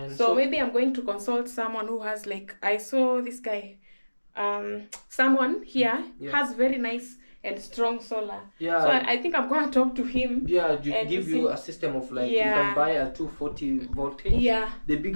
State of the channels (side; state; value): both; inverted; correlation -1.00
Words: So maybe I'm going to consult someone who has like, I saw this guy. Someone here has very nice and strong solar. Yeah. So I think I'm gonna talk to him. Yeah, give you a system of like you can buy a 240 voltage. Yeah. The